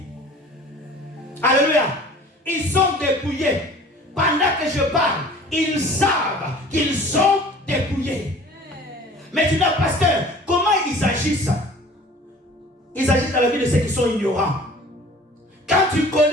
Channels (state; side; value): normal; both; correlation 0.47